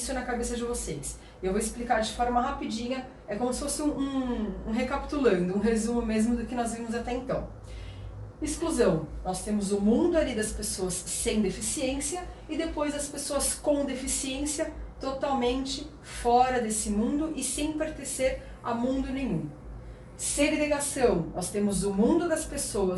na cabeça de vocês. Eu vou explicar de forma rapidinha, é como se fosse um recapitulando, um resumo mesmo do que nós vimos até então. Exclusão, nós temos o mundo ali das pessoas sem deficiência e depois as pessoas com deficiência totalmente fora desse mundo e sem pertencer a mundo nenhum. Segregação, nós temos o mundo das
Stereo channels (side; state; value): both; identical; correlation 1.00